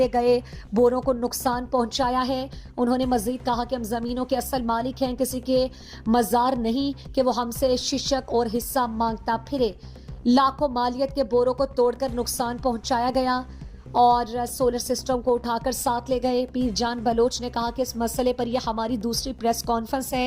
گئے بوروں کو نقصان پہنچایا ہے. انہوں نے مزید کہا کہ ہم زمینوں کے اصل مالک ہیں, کسی کے مزار نہیں کہ وہ ہم سے ششک اور حصہ مانگتا پھرے. لاکھوں مالیت کے بوروں کو توڑ کر نقصان پہنچایا گیا اور سولر سسٹم کو اٹھا کر ساتھ لے گئے. پیر جان بلوچ نے کہا کہ اس مسئلے پر یہ ہماری دوسری پریس کانفرنس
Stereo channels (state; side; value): identical; both; correlation 1.00